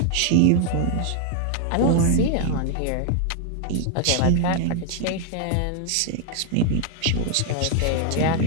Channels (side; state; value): both; different; correlation 0.00